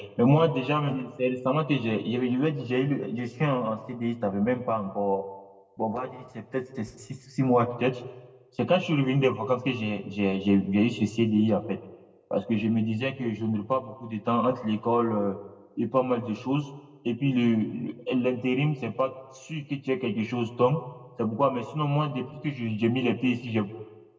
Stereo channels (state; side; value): identical; both; correlation 1.00